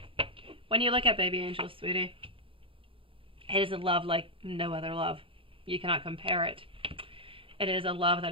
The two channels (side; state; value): left; late; 0.26 ms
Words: When you look at baby Angel, sweetie, it is a love like no other love. You cannot compare it. It is a love